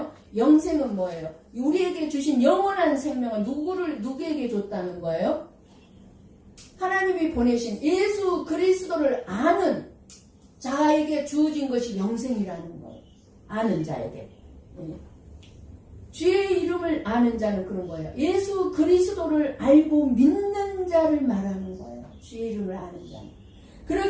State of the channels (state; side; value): identical; both; correlation 1.00